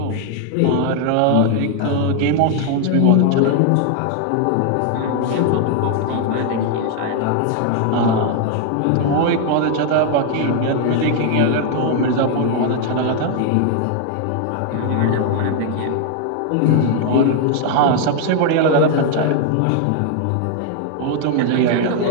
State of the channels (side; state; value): both; different; correlation 0.00